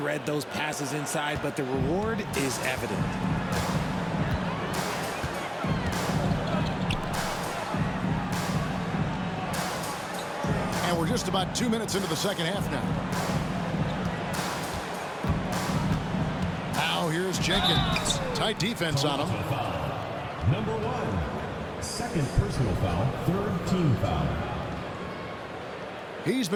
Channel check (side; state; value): both; identical; correlation 1.00